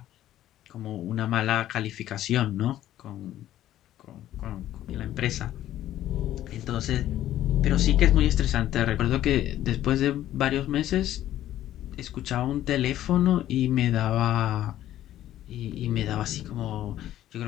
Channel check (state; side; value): quieter; right; 12.9 dB